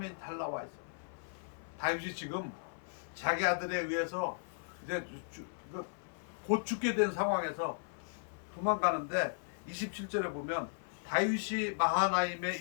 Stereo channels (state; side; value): silent; right; 54 dB below the other